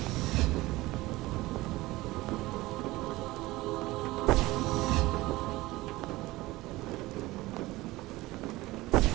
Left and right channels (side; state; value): left; quieter; 19.2 dB